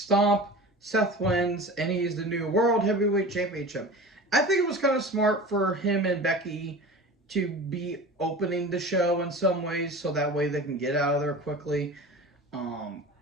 Seth wins, and he's the new World Heavyweight Championship. I think it was kind of smart for him and Becky to be opening the show in some ways, so that way they can get out of there quickly.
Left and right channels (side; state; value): both; normal; correlation 0.35